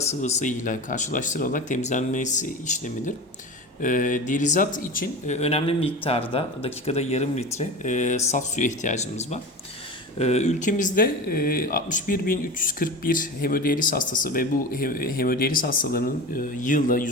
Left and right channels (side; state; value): both; normal; correlation 0.29